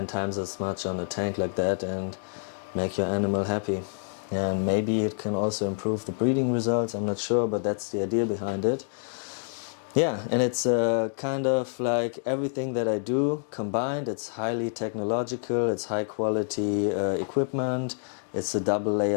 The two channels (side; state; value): right; silent; digital silence